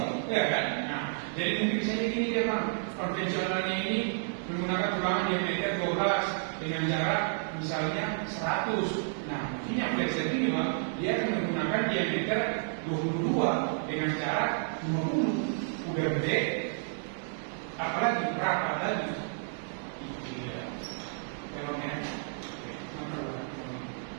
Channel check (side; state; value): left; silent; digital silence